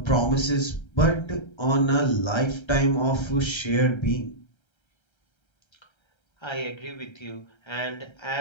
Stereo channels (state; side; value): late; right; 1.3 ms